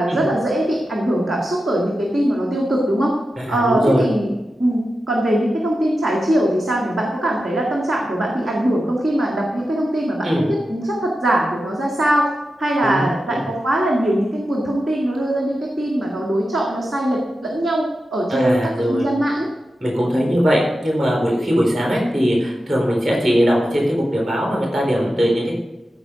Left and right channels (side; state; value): both; normal; correlation 0.91